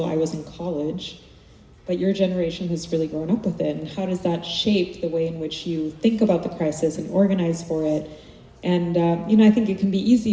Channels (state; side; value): identical; both; correlation 1.00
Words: I was in college, but your generation has really grown up with it. And how does that shape the way in which you think about the crisis and organize for it? And, you know, I think it can be